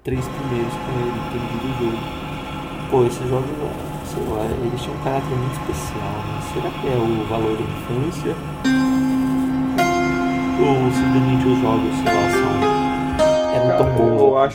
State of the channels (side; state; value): both; identical; correlation 1.00